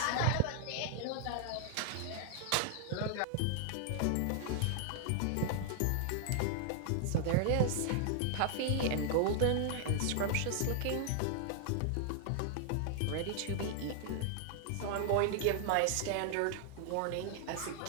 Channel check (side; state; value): both; different; correlation 0.00